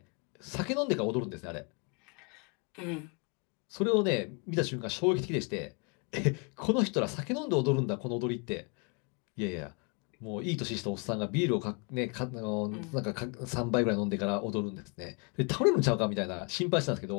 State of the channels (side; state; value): right; quieter; 34.6 dB